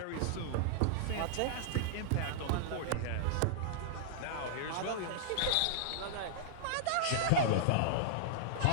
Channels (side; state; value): both; different; correlation -0.01